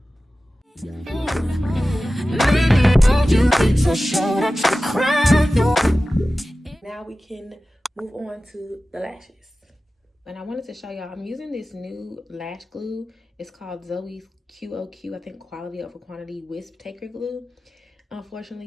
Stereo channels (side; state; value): both; normal; correlation 0.95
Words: Now we can move on to the lashes. And I wanted to show y'all, I'm using this new lash glue. It's called Zoes QOQ, I think quality over quantity wisp taker glue.